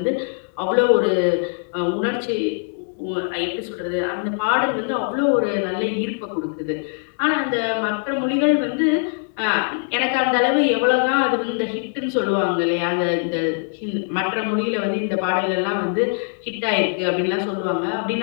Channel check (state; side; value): silent; right; digital silence